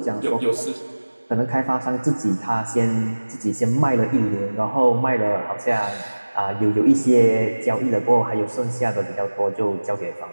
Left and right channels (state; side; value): inverted; both; correlation -1.00